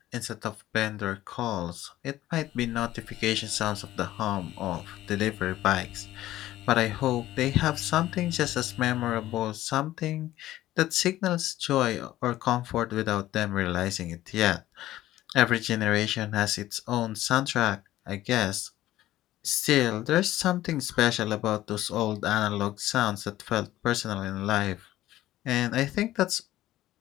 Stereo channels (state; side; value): quieter; right; 14.7 dB